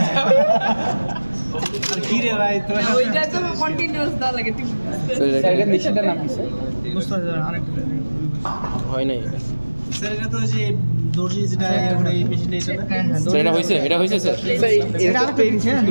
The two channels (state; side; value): inverted; both; correlation -1.00